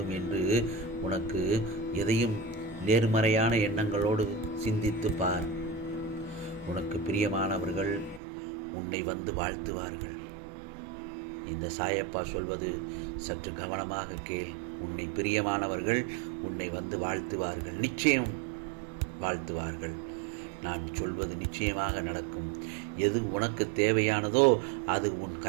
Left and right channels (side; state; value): left; drops out; at 8.2 s